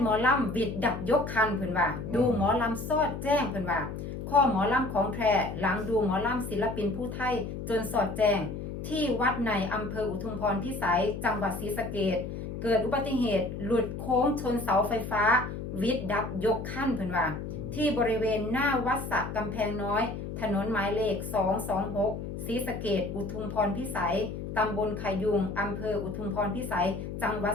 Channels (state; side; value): noise; left; hum, 7 dB below the sound